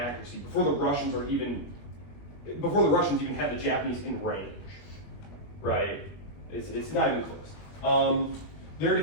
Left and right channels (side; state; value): right; late; 21 ms